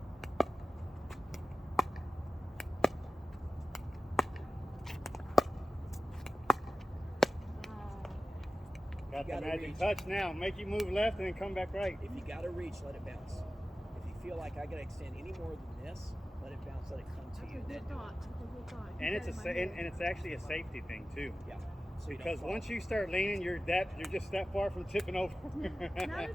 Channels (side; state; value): both; normal; correlation 0.96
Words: Got the gotta magic reach. touch now. Make you move left and then come back right. If you got to reach, let it bounce. If you feel like I got to extend any more than this, let it bounce, let it come to That's you. a Then good do it. thought. That's a good thought. And Keep it's that a in my head. and it's actually a safety thing too. Yeah. So you don't Because fall. once you start leaning, you're just that far from tipping over. Not